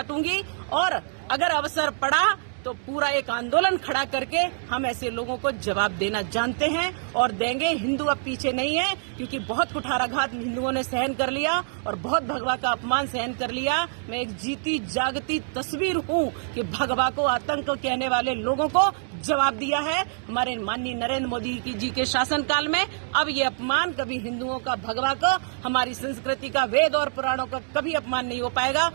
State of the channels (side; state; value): left; silent; digital silence